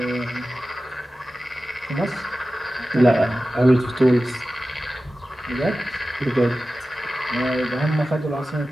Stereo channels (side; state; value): both; normal; correlation 0.95